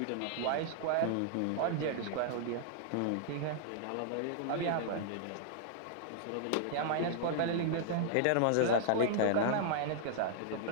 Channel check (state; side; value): different; both; correlation -0.01